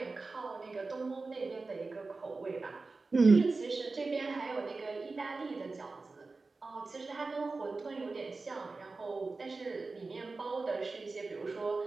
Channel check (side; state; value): left; quieter; 3.8 dB